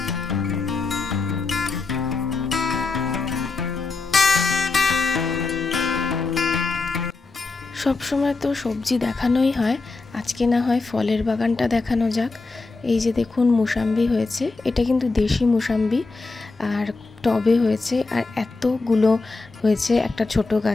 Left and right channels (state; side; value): quieter; right; 3.8 dB